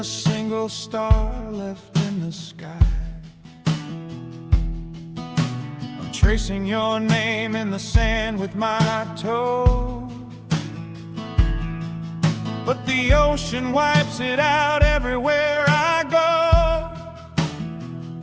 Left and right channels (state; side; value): identical; both; correlation 1.00